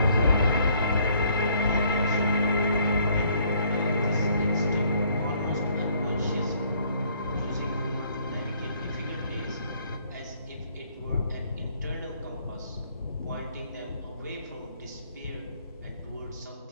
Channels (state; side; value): inverted; both; correlation -0.63